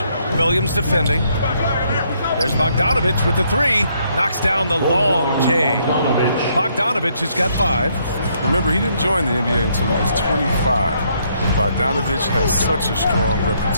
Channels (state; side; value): inverted; both; correlation -0.71